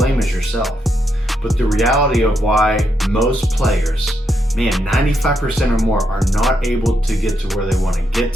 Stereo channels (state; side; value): normal; both; correlation 0.80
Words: is yourself. But the reality of why most players, 95% or more, are not able to get to where they want to get